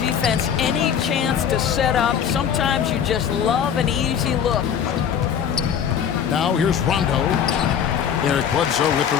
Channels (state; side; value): quieter; right; 8.2 dB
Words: any chance to set up. Sometimes you just love an easy look. Now here's Rondo. Eric Bledsoe with the